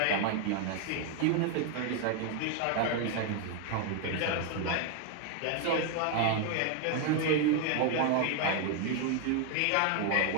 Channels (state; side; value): different; both; correlation 0.00